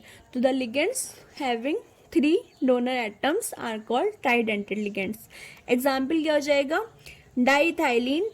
तो the ligands having 3 donor atoms are called tridentate ligands. Example क्या हो जाएगा, डाइथाइलिन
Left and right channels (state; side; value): identical; both; correlation 1.00